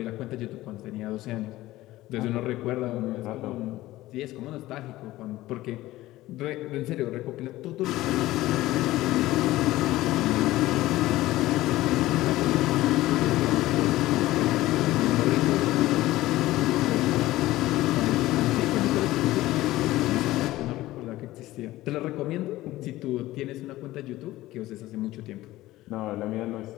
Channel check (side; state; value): right; quieter; 16.8 dB